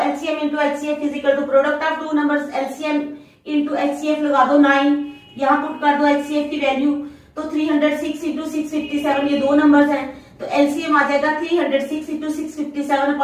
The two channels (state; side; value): identical; both; correlation 1.00